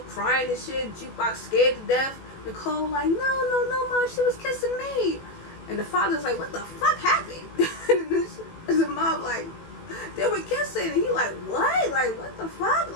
crying and shit. Jukebox scared to death. Nicole like, no, mom, she was kissing me. And the father's like, what the fuck happened? And the mom like, they were kissing. And he like, what? Like, what the fuck?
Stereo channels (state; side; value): late; right; 18 ms